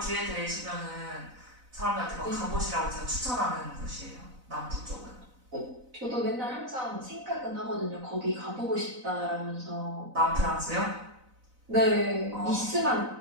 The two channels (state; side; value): late; left; 4.0 ms